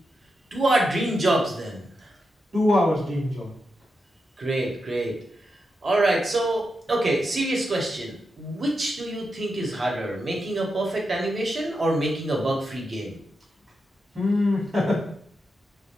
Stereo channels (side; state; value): both; normal; correlation 0.87